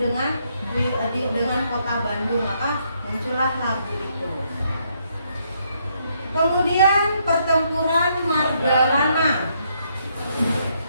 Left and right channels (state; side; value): inverted; both; correlation -0.73